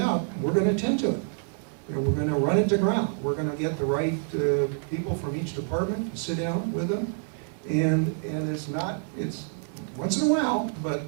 we're going to attend to it. You know, we're going to run it to ground. We're going to get the right people from each department to sit down with them. And it's once in a while, but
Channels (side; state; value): left; silent; 58 dB below the other